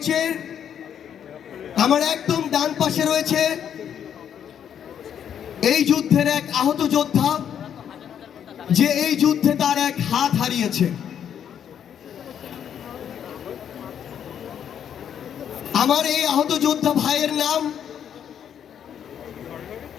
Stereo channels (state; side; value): quieter; right; 8.9 dB